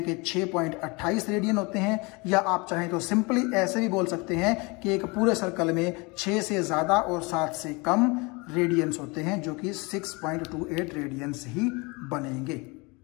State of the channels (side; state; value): right; quieter; 27.4 dB